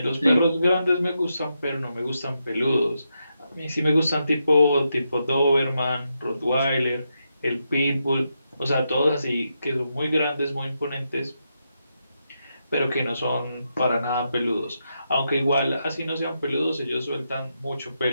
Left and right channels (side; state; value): both; inverted; correlation -0.84